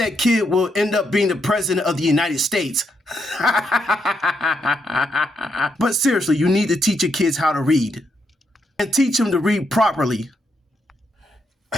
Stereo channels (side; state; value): both; normal; correlation 0.79